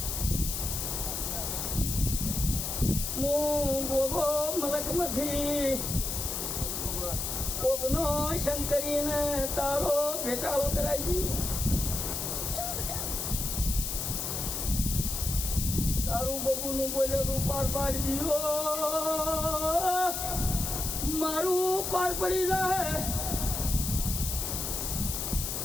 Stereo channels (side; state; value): left; noise; hiss, 3 dB below the sound